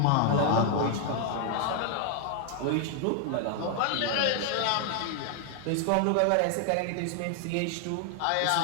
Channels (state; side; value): different; both; correlation 0.00